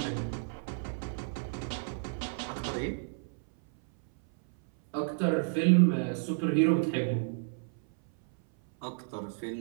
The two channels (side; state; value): left; silent; 57 dB below the other